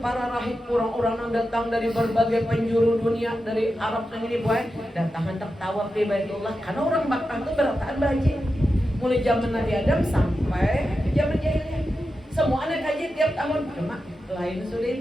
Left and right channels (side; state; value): both; normal; correlation 0.90